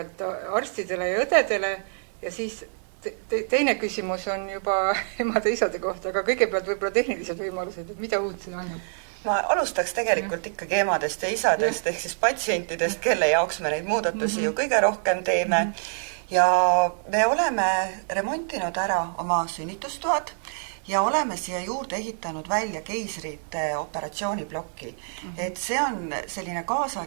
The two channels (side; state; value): left; silent; digital silence